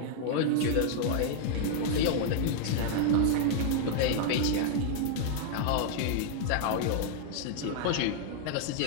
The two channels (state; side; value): different; both; correlation 0.00